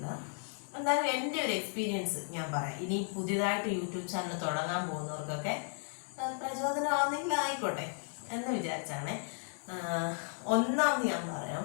എന്നാലും എൻ്റെ ഒരു എക്സ്പീരിയൻസ് ഞാൻ പറയാം. ഇനി പുതിയതായിട്ട് യൂട്യൂബ് ചാനൽ തുടങ്ങാൻ പോകുന്നവർക്കൊക്കെ പ്രചോദനമാണെങ്കിൽ ആയിക്കോട്ടെ എന്ന് വിചാരിച്ചാണ്. ഒന്നാമത് ഞാൻ പറയാം,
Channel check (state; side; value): silent; right; 55 dB below the other